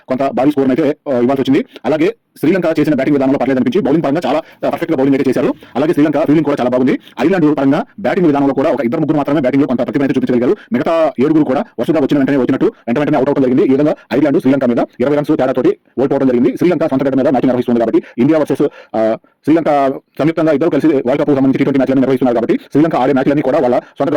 కొంత భారీ స్కోర్ అయితే ఇవ్వాల్సి వచ్చింది. అలాగే శ్రీలంక చేసిన బ్యాటింగ్ విధానంలో పర్లేదు అనిపించి బౌలింగ్ పరంగా చాలా పర్ఫెక్ట్ గా బౌలింగ్ అయితే చేశారు. అలాగే శ్రీలంక ఫీల్డింగ్ కూడా చాలా బాగుంది. ఐర్లాండ్ పరంగా బ్యాటింగ్ విధానంలో కూడా ఒక 2-3 మాత్రమే బ్యాటింగ్ లో కొంత ప్రతిభ అయితే చూపించగలిగారు. మిగతా 7 కూడా వరుసగా వచ్చిన వెంటనే వెంటనే అవుట్ అవడం జరిగింది. ఈ విధంగా ఐర్లాండ్ శ్రీలంక మీద 20 రన్స్ తేడాతోటి ఓడిపోవడం జరిగింది. శ్రీలంక సొంత గడ్డ మీద మ్యాచ్ నిర్వహిస్తుంది కాబట్టి ఇండియా వర్సెస్ శ్రీలంక సంయుక్తంగా ఇద్దరు కలిసి వరల్డ్ కప్ సంబంధించి T20 మ్యాచ్లను నిర్వహిస్తున్నారు కాబట్టి శ్రీలంక ఆడే మ్యాచ్లన్నీ కూడా వాళ్ళ సొంత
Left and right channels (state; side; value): identical; both; correlation 1.00